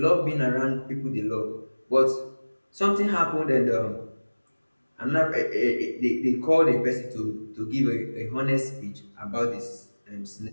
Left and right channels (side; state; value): both; inverted; correlation -1.00